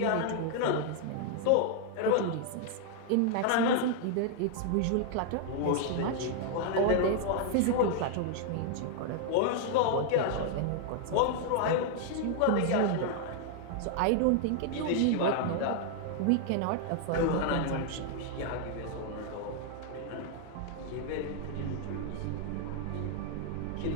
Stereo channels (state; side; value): different; both; correlation 0.00